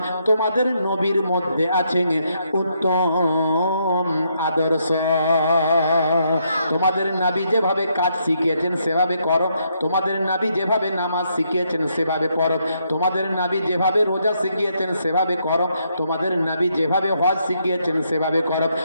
তোমাদের নবীর মধ্যে আছে উত্তম আদর্শ। তোমাদের নবী যেভাবে কাজ শিখিয়েছেন সেভাবে করো, তোমাদের নবী যেভাবে নামাজ শিখিয়েছেন সেভাবে পড়ো, তোমাদের নবী যেভাবে রোজা শিখিয়েছেন সেভাবে করো, তোমাদের নবী যেভাবে হজ শিখিয়েছেন সেভাবে করো,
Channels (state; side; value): inverted; both; correlation -0.75